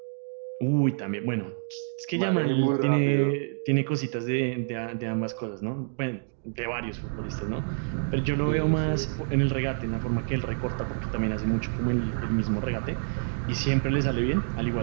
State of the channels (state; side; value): silent; left; digital silence